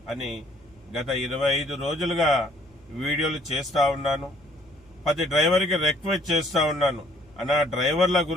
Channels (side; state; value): both; normal; correlation 0.62